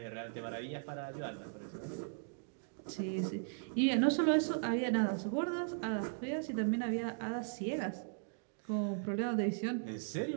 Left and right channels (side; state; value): left; silent; digital silence